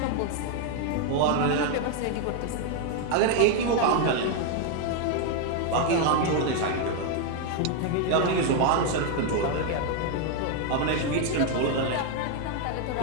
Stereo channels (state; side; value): different; both; correlation 0.01